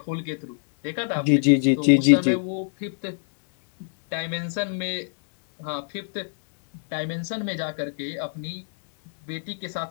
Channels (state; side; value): silent; right; digital silence